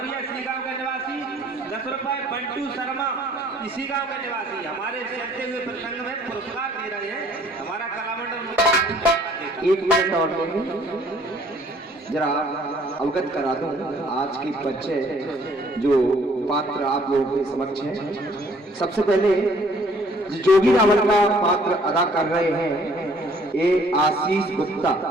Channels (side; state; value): both; normal; correlation 0.59